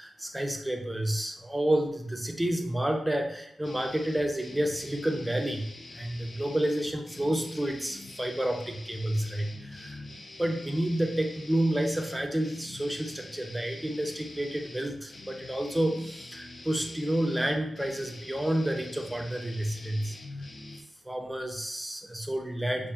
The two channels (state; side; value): normal; both; correlation 0.96